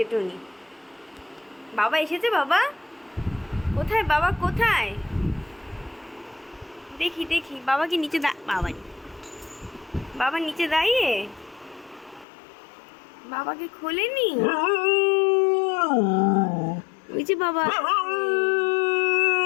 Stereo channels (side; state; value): right; drops out; at 12.2 s